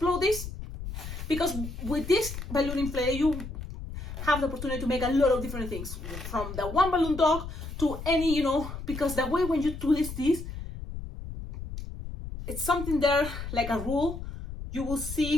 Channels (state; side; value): noise; left; rumble, 8 dB below the sound